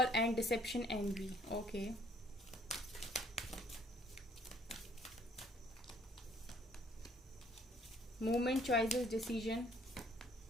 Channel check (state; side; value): normal; both; correlation 0.61